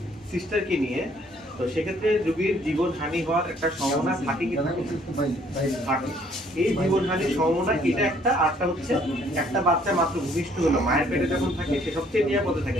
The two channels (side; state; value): both; normal; correlation 0.62